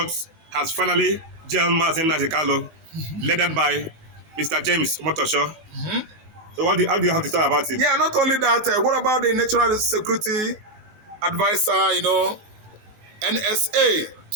has finally jailed Mazi led by Mr. James Omotosho. So how do you have to talk about it? Yeah, not only that, what about the National Security Advisor, NSA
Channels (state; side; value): late; left; 19 ms